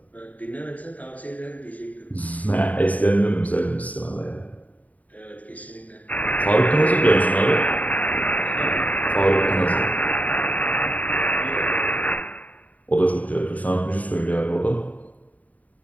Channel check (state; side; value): late; right; 0.073 ms